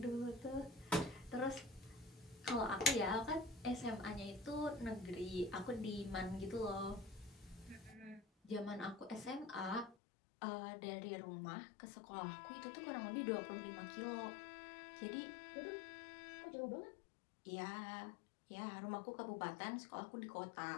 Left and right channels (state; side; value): drops out; right; at 10.0 s